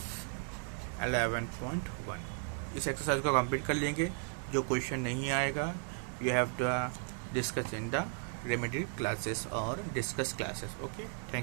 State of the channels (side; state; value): left; silent; 54 dB below the other